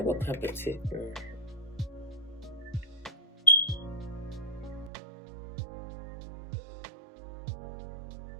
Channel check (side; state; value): left; drops out; at 4.9 s